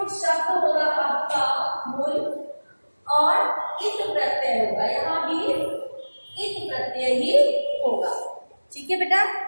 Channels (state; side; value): inverted; both; correlation -1.00